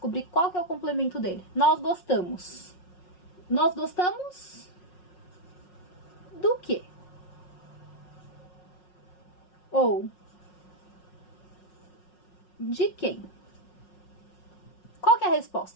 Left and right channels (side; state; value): right; late; 5.5 ms